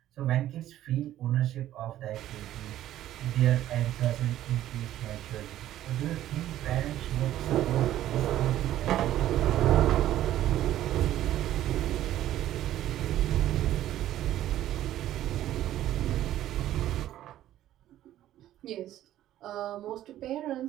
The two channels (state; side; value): quieter; left; 13.0 dB